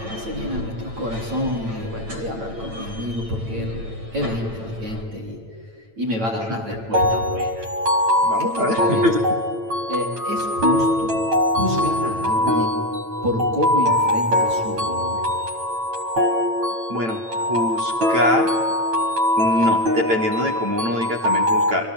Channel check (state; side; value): late; left; 9.0 ms